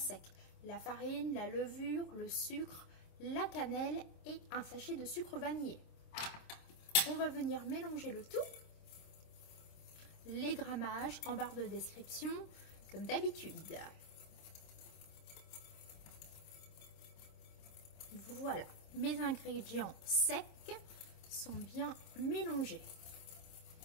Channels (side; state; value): right; late; 26 ms